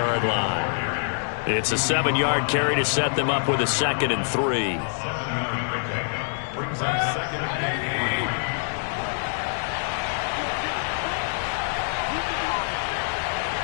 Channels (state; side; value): silent; right; digital silence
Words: line. It's a 7-yard carry to set them up with a 2nd and 3.